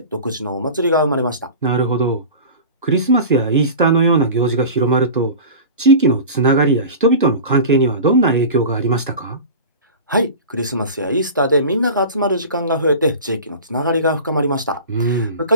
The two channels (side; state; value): both; inverted; correlation -0.34